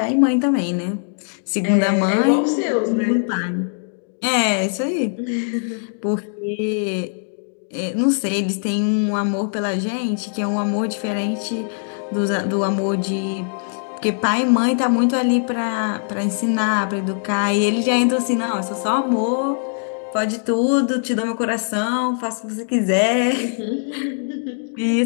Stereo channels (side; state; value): right; silent; digital silence